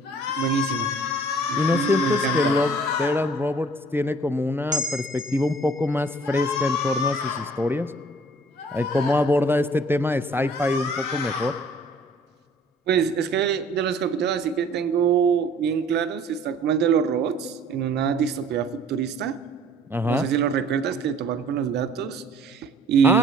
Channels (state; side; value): normal; both; correlation 0.54